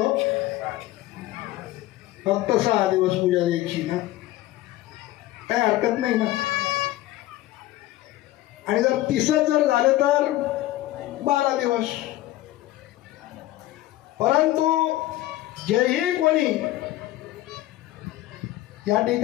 फक्त 6 दिवस पूजा द्यायची ना, काय हरकत नाही ना. आणि जर 30 जर झाले तर 12 दिवस. परंतु जेही कोणी या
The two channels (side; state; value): right; quieter; 16.1 dB